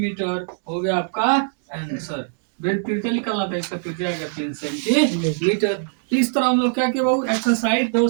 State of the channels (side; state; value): left; silent; digital silence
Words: हो गया आपका आंसर। वृत्त त्रिज्या निकालना था, इसका त्रिज्या आएगा 3 सेंटीमीटर। इस तरह हम लोग क्या किया बाबू एक्सरसाइज